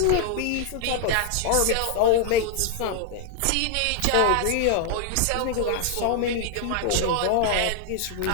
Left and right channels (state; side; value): different; both; correlation 0.00